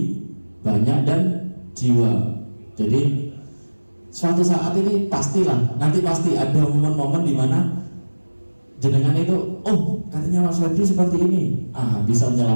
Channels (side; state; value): both; inverted; correlation -1.00